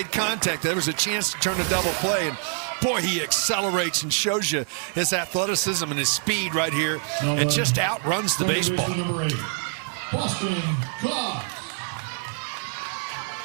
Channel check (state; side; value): silent; left; 55 dB below the other